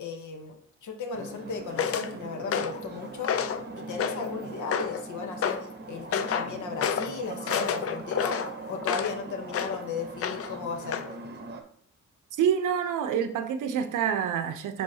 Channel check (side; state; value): both; normal; correlation -0.04